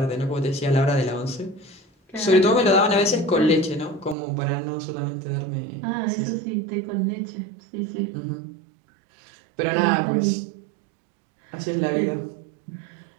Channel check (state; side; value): drops out; left; at 4.2 s